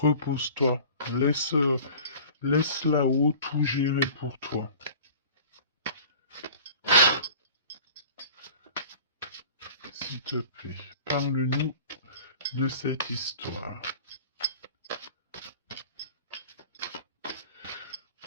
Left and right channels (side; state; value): both; inverted; correlation -0.43